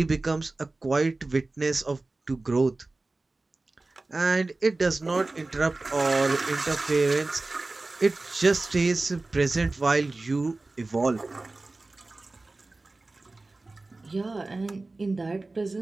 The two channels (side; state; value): left; quieter; 3.2 dB